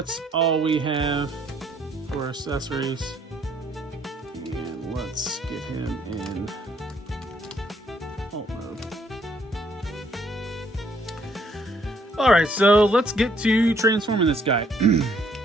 all we have for accessories. And let's get him in alt mode. Alright, so let's get to transforming this guy.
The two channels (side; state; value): both; normal; correlation 0.66